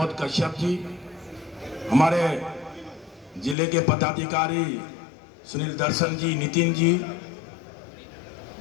कश्यप जी, हमारे जिले के पदाधिकारी सुनील दर्शन जी, नितिन जी,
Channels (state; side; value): drops out; right; at 3.6 s